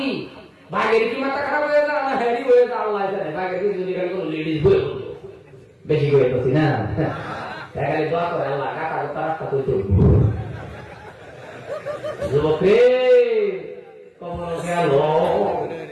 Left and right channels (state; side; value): identical; both; correlation 1.00